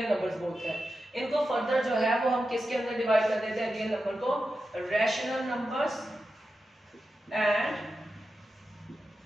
नंबर्स बोलते हैं। इनको फर्दर जो है वो हम किसके अंदर डिवाइड कर देते हैं, रियल नंबर को rational numbers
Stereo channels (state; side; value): normal; both; correlation 0.91